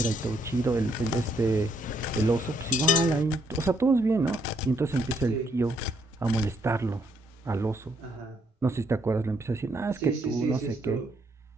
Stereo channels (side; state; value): both; normal; correlation 0.72